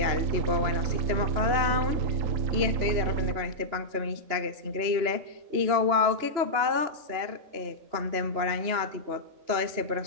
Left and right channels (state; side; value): late; left; 3.0 ms